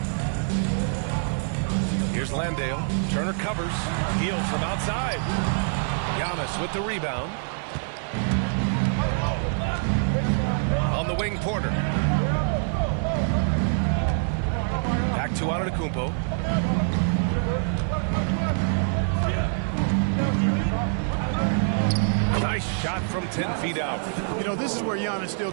Here's Landale. Turner covers. Hield from outside. Giannis with the rebound. On the wing, Porter. Back to Antetokounmpo. Nice shot from 10 feet out. You know, this is where Giannis still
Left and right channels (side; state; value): left; silent; 58 dB below the other